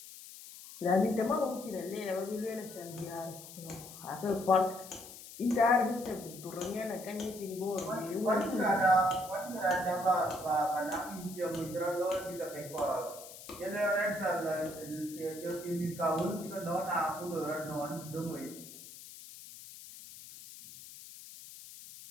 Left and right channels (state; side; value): noise; left; hiss, 15 dB below the sound